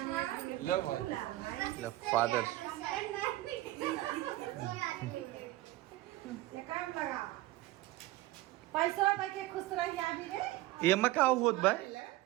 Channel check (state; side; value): quieter; left; 17.4 dB